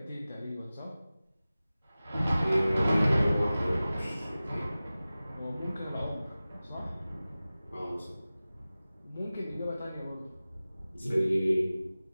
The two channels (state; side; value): inverted; both; correlation -0.97